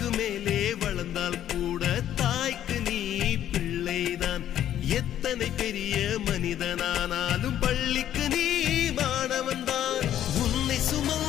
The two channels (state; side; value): quieter; right; 11.3 dB